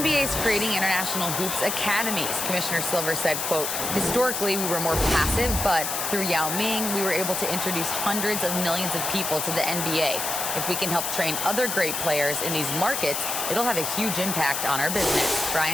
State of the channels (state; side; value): noise; left; hiss, 2 dB below the sound